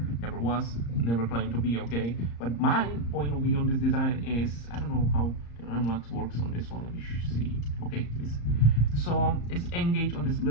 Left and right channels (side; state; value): right; late; 34 ms